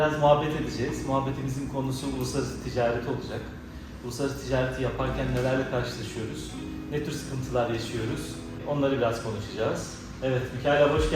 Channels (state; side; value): identical; both; correlation 1.00